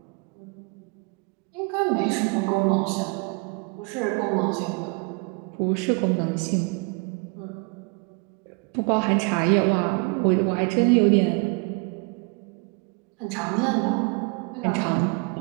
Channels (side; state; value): left; quieter; 31.6 dB